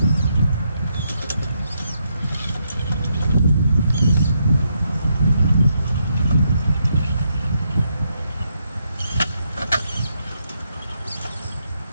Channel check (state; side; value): inverted; both; correlation -0.79